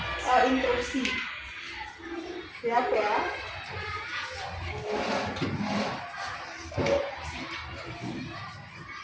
instruksi. Siap ya?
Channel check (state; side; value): identical; both; correlation 1.00